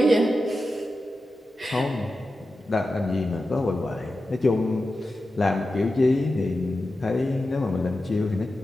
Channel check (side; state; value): both; normal; correlation 0.92